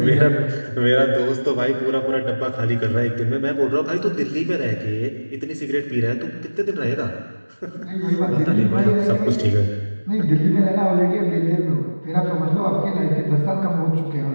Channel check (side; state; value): both; inverted; correlation -1.00